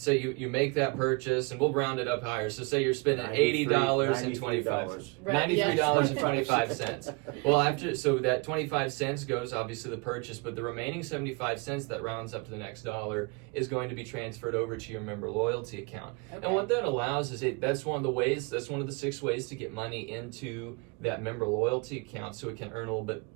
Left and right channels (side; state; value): left; quieter; 29.9 dB